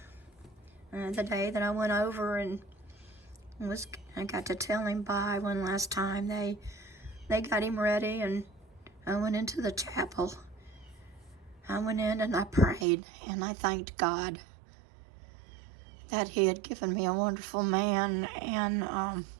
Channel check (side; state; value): left; drops out; at 12.9 s